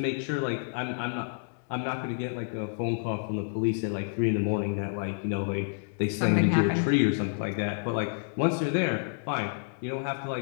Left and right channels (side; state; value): right; silent; 58 dB below the other